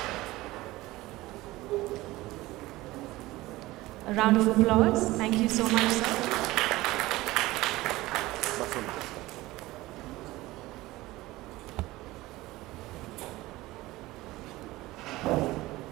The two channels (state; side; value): quieter; left; 18.6 dB